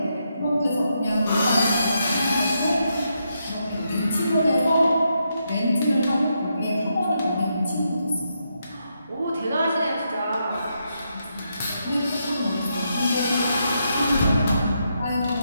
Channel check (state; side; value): inverted; both; correlation -0.81